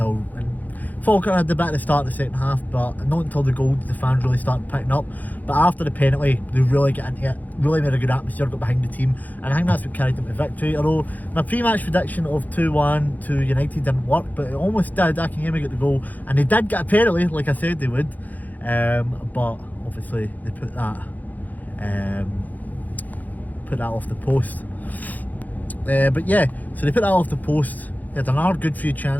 Falkirk had the bit at the start of the second half, but not until the goal did the fans really started picking up. But after the penalty, they really got into it, really made a good atmosphere, got behind the team, and I think that's what carried them to victory. Although my pre-match prediction of 2-1 to United didn't work, but it almost did. Akinyemi got the goal, and they did get a penalty, like I said they would. But obviously they put that off the post. But yeah, so they put that off the post. They had another good few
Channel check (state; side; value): late; right; 0.081 ms